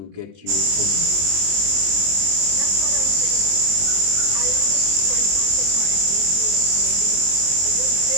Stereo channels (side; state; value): left; late; 21 ms